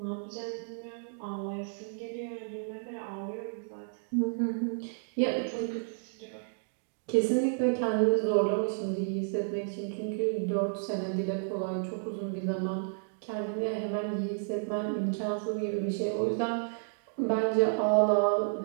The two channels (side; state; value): left; silent; digital silence